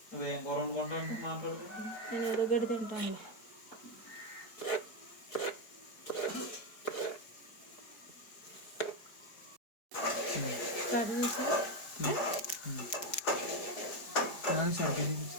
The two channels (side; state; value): right; late; 4.8 ms